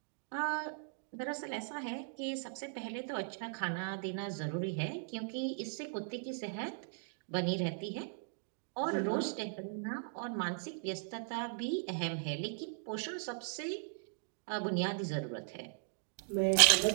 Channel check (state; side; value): silent; left; digital silence